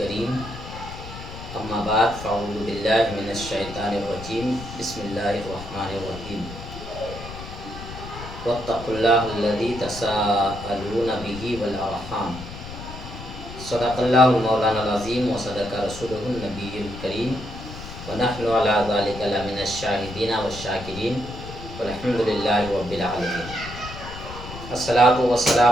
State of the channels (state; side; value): noise; left; rumble, 12 dB below the sound